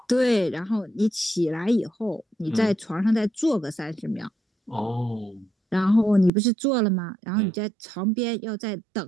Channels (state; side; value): drops out; left; at 6.3 s